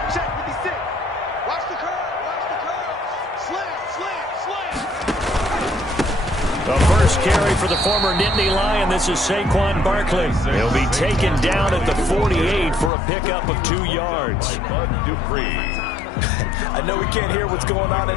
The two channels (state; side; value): drops out; right; at 12.9 s